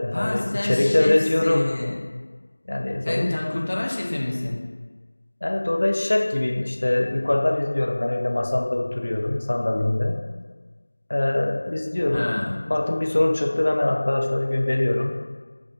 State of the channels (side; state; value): both; inverted; correlation -1.00